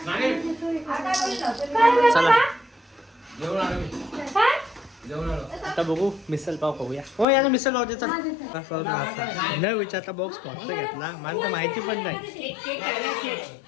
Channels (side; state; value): right; drops out; at 7.2 s